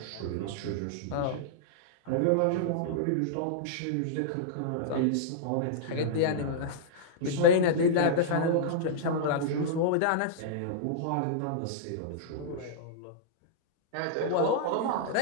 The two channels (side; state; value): both; different; correlation -0.02